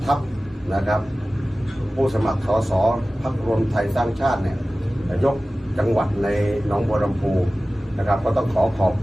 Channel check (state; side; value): normal; both; correlation 0.97